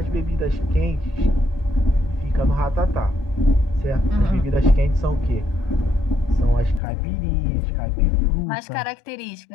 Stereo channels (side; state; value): right; drops out; at 6.8 s